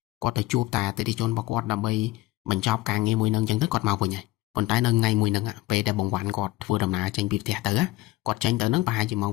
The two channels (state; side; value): quieter; right; 17.7 dB